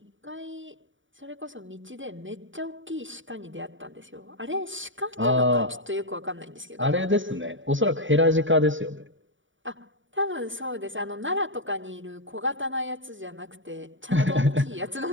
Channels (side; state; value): left; late; 0.56 ms